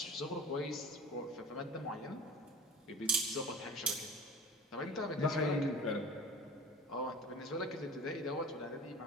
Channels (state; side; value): normal; both; correlation 0.38